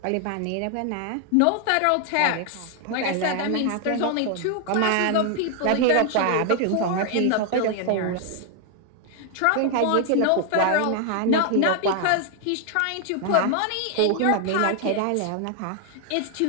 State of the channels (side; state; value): both; different; correlation 0.00